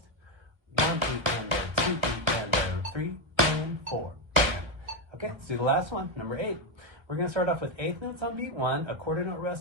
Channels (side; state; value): left; late; 1.2 ms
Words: 1, 2, and 2, and 3, and 4. Okay, let's do the last one, number 8. We're going to start off with 8th notes on beat 1, a quarter note